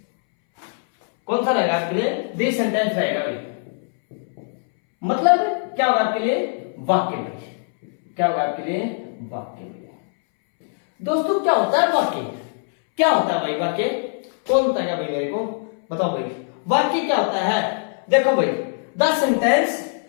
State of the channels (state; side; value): silent; right; 63 dB below the other